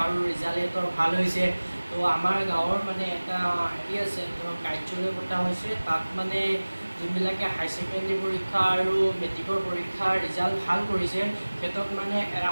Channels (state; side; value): inverted; both; correlation -1.00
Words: আৰু ৰিজাল্ট সিহঁতৰ ভাল হৈছে। তো আমাৰ গাঁৱৰ মানে এটা হেৰি আছে, ধৰক কাৰ্যালয় পতা হৈছে। তাত মানে যোনবিলাকে হাই ছেকেণ্ডেৰী পৰীক্ষা আৰু মেট্ৰিকৰ পৰীক্ষাৰ ৰিজাল্ট ভাল কৰিছে সিহঁতক মানে এটা